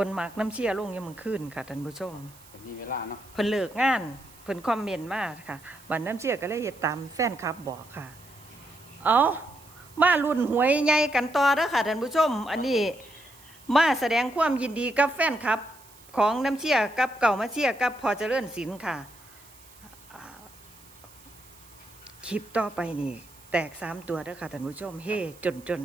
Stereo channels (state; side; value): noise; right; hiss, 23 dB below the sound